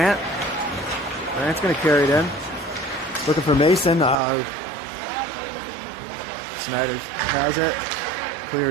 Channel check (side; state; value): left; drops out; at 4.2 s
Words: Grant's going to carry it in. Looking for Mason. Snider has it.